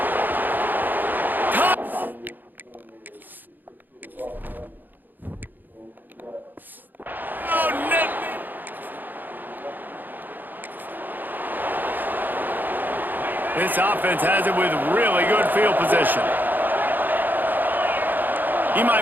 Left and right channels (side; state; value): left; late; 0.088 ms